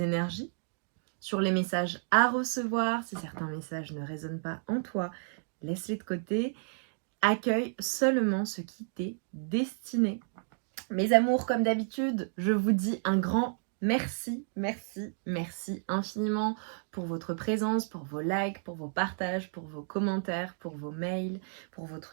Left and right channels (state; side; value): silent; left; digital silence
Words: énergies, sur les messages à recevoir. Si certains messages ne résonnent pas en toi, laisse-les de côté. Accueille seulement ce qui t'est destiné. Mes amours, comme d'habitude, je vous dis un grand merci, merci, merci infiniment pour votre présence, pour vos likes, pour vos partages, pour vos commentaires, pour vos mails, pour